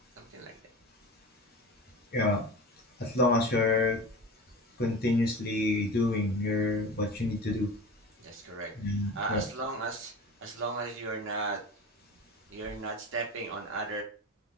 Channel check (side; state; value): both; normal; correlation 0.33